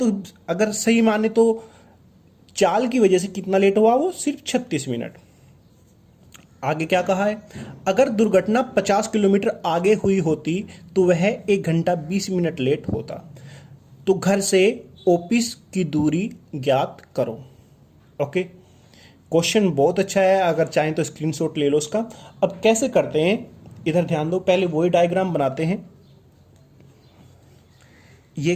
अगर सही माने तो चाल की वजह से कितना लेट हुआ वो सिर्फ 36 मिनट। आगे क्या कहा है, अगर दुर्घटना 50 किलोमीटर आगे हुई होती तो वह 1 घंटा 20 मिनट लेट होता। तो घर से ऑफिस की दूरी ज्ञात करो। ओके, क्वेश्चन बहुत अच्छा है, अगर चाहें तो स्क्रीनशॉट ले लो उसका। अब कैसे करते हैं, इधर ध्यान दो, पहले वही डायग्राम बनाते हैं। ये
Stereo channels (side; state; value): both; identical; correlation 1.00